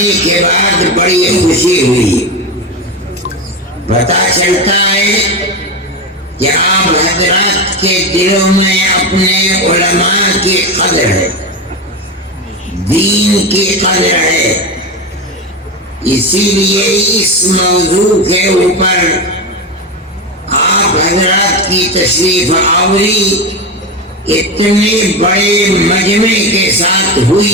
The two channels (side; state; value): both; normal; correlation 0.18